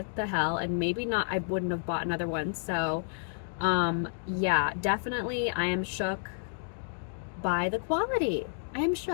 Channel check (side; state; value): right; silent; digital silence